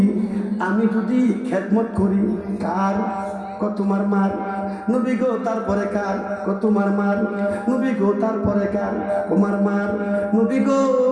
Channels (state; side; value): identical; both; correlation 1.00